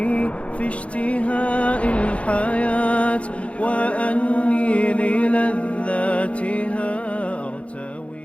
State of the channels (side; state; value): right; late; 0.063 ms